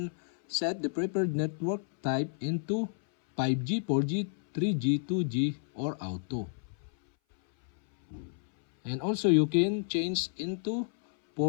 set the preferred network type into 5G, 4G, 3G, 2G, or auto. And also you can change into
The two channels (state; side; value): silent; right; 57 dB below the other